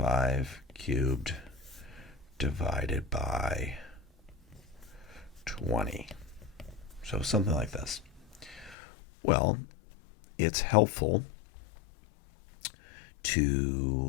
cubed divided by 20. So something like this. Well, it's helpful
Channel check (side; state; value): right; drops out; at 8.8 s